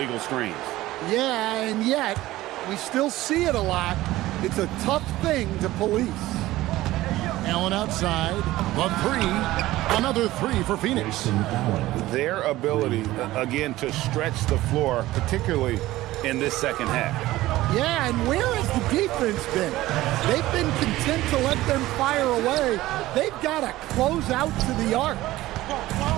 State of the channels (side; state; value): left; quieter; 16.7 dB